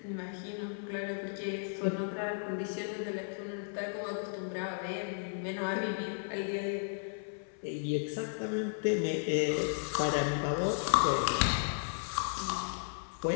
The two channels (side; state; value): right; silent; 55 dB below the other